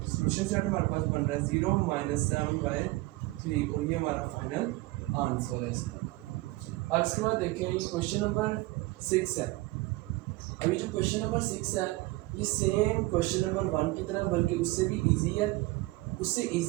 सोल्यूशन सेट हमारे पास बन रहा है 0 - 7/3 और ये हमारा फाइनल आंसर है इसका। अब इसके बाद देखें ये क्वेश्चन नंबर 6 है। अभी जो क्वेश्चन नंबर 6 है ये सेम क्वेश्चन नंबर 1 की तरह बल्कि उससे भी इजी है। उससे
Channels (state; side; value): quieter; left; 20.7 dB